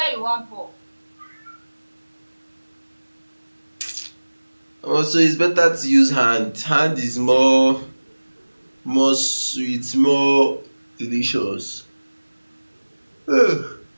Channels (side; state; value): both; inverted; correlation -1.00